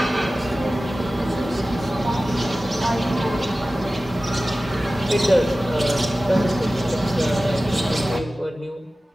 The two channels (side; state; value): both; normal; correlation 0.96